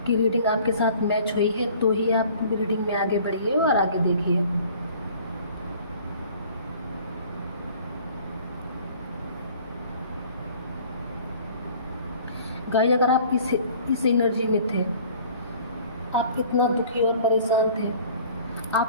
की रीडिंग आपके साथ मैच हुई है तो ही आप रीडिंग में आगे बढ़िए और आगे देखिए। गाइस, अगर आप इस एनर्जी में थे, आप इतना दुखी और परेशान थे,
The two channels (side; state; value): both; inverted; correlation -0.51